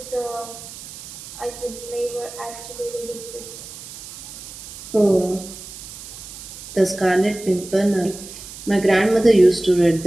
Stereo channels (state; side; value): noise; right; hiss, 13 dB below the sound